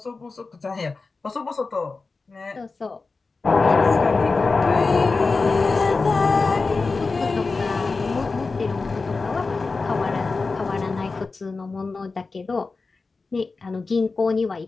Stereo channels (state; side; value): quieter; right; 4.0 dB